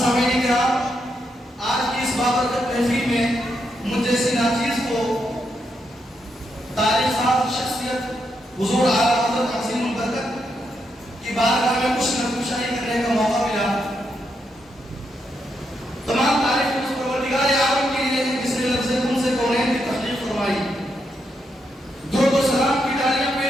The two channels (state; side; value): normal; both; correlation 0.81